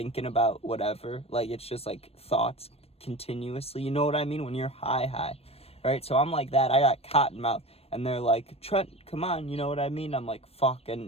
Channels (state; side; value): late; right; 0.29 ms